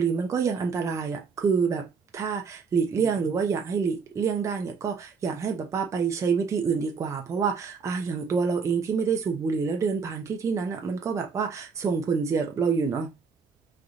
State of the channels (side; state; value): left; quieter; 5.4 dB